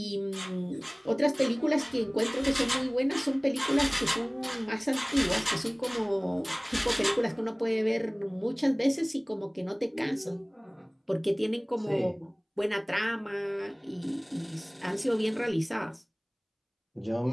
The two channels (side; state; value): both; identical; correlation 1.00